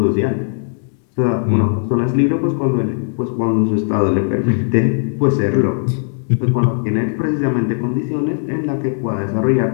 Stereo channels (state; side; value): silent; right; 66 dB below the other